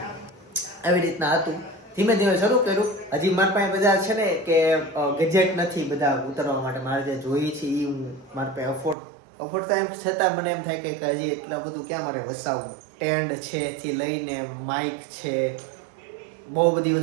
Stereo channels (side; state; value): left; drops out; at 9.0 s